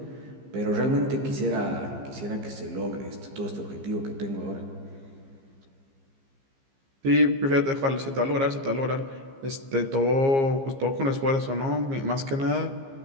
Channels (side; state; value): left; late; 15 ms